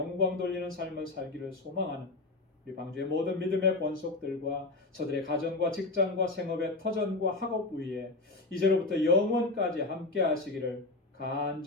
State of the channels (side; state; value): right; quieter; 3.1 dB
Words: 돌리는 삶을 살기를 소망하는 우리 방주의 모든 믿음의 권속들과 저들의 가정과 직장과 생업의 터전과 학업 위에 이제로부터 영원까지 함께 하시기를